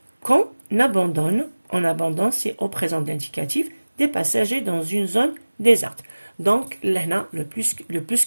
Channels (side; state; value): both; inverted; correlation -1.00